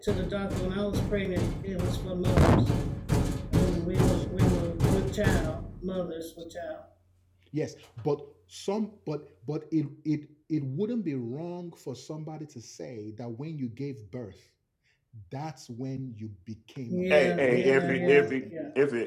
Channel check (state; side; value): identical; both; correlation 1.00